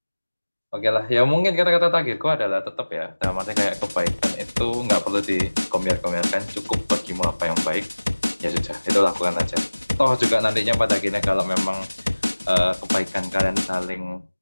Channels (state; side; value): inverted; both; correlation -1.00